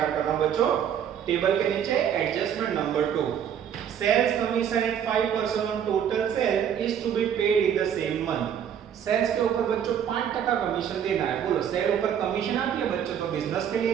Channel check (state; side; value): quieter; left; 8.9 dB